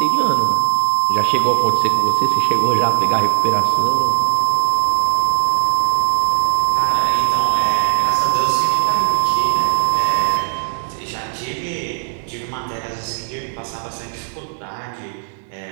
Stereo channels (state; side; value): silent; left; digital silence